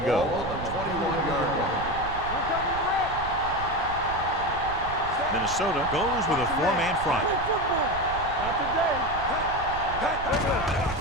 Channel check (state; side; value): noise; right; rumble, 11 dB below the sound